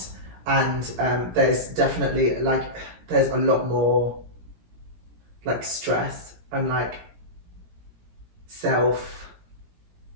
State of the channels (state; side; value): late; left; 17 ms